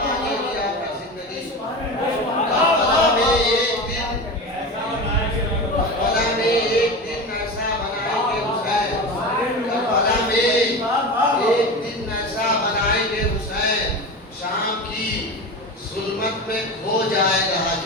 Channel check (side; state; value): both; normal; correlation 0.27